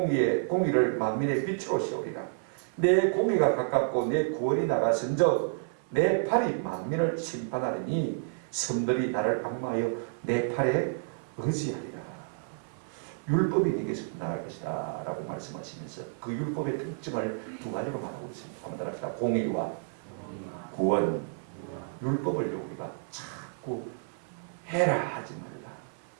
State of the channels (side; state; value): left; silent; 55 dB below the other